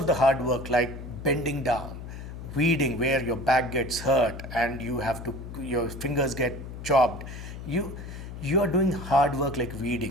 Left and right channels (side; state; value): left; noise; hum, 10 dB below the sound